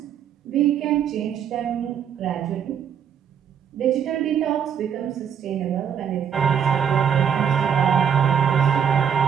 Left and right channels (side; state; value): left; quieter; 8.2 dB